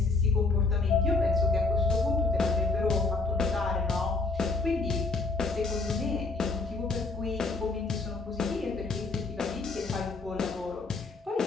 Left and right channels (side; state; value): right; quieter; 3.8 dB